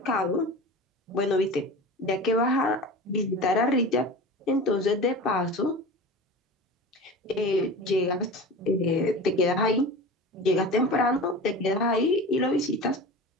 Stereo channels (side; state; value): both; normal; correlation 0.33